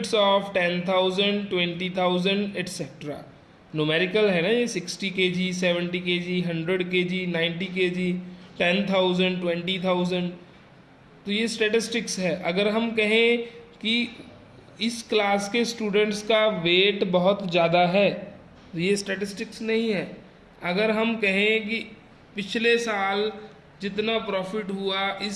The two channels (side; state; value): both; identical; correlation 1.00